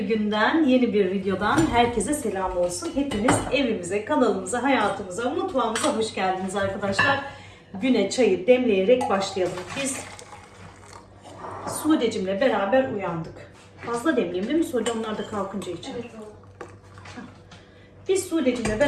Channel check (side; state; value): both; identical; correlation 1.00